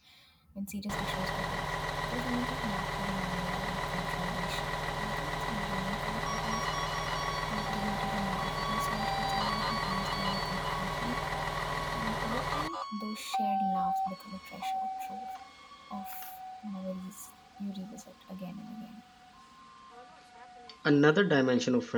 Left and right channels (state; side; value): identical; both; correlation 1.00